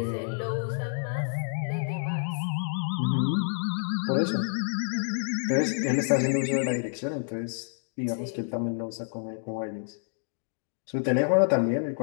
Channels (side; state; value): right; silent; digital silence